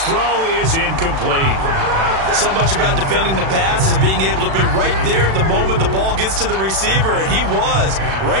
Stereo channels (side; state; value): left; late; 36 ms